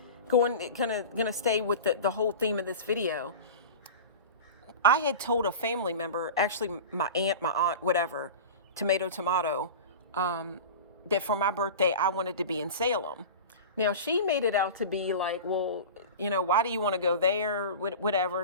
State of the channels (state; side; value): inverted; both; correlation -0.32